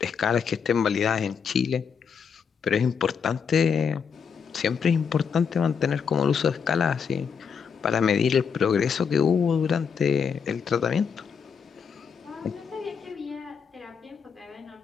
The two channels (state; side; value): quieter; right; 6.6 dB